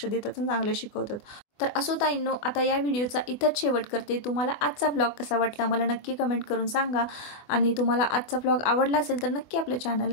देतात आणि चांगले शिकवतात. तर असो ताईंनो, आता या व्हिडिओचा इथंच शेवट करते. तुम्हाला आजचा ब्लॉग कसा वाटला मला नक्की कमेंट करून सांगा, आणि तुम्हाला आजचा ब्लॉग आवडला असेल तर नक्की आपल्या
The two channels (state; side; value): late; right; 24 ms